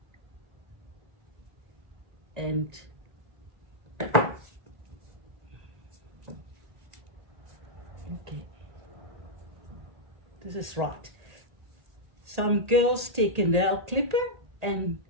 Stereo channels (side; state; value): left; late; 1.8 ms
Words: and okay, this is right. Some girls take a nail clipper, and